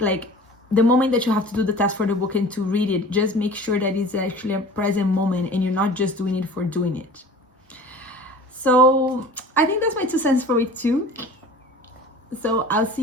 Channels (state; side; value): normal; both; correlation 0.41